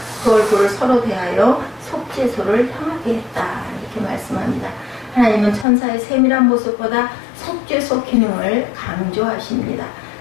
그 얼굴을 서로 대하여 속죄소를 향하게 했다. 이렇게 말씀합니다. 하나님은 천사의 세밀한 모습보다 속죄소 기능을 강조하십니다.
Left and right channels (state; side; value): drops out; right; at 5.7 s